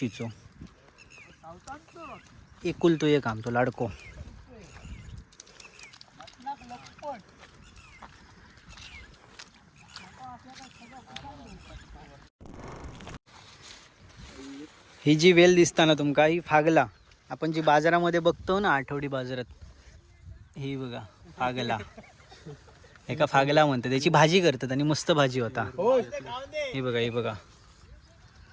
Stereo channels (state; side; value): identical; both; correlation 1.00